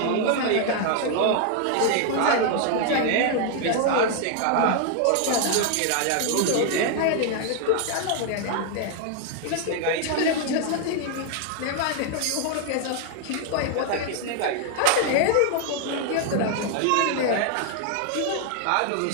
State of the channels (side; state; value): both; different; correlation 0.00